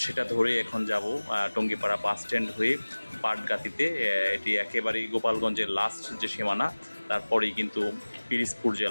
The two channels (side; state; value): both; inverted; correlation -1.00